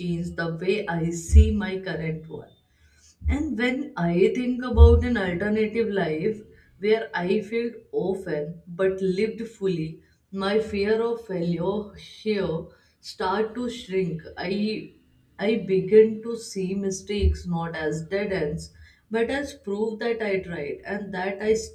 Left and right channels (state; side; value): identical; both; correlation 1.00